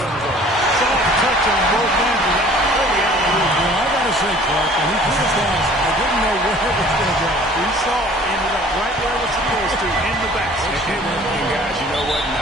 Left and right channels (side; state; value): both; normal; correlation 0.51